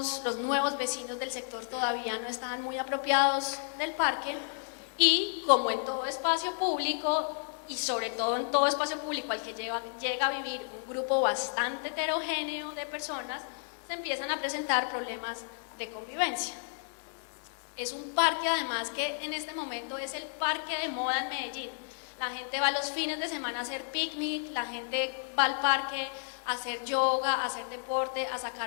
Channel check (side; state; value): right; silent; digital silence